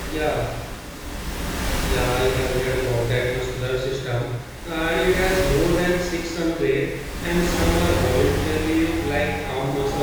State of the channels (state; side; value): identical; both; correlation 1.00